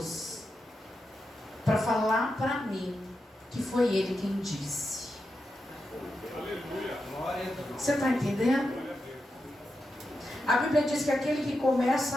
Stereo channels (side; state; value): both; normal; correlation 0.88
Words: para falar para mim que foi Ele quem disse. Você está entendendo? A Bíblia diz que aquele que